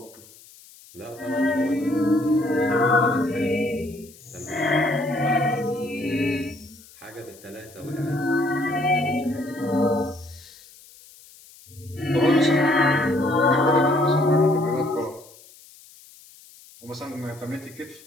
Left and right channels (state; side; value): noise; left; hiss, 23 dB below the sound